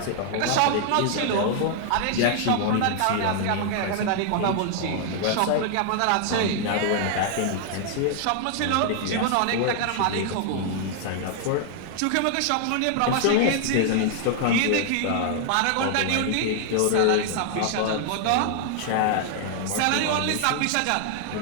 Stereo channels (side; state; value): both; different; correlation 0.00